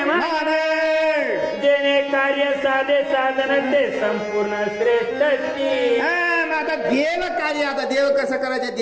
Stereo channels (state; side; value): identical; both; correlation 1.00